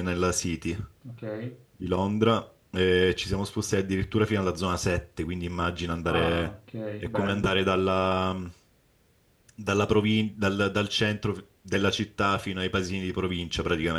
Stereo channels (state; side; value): identical; both; correlation 1.00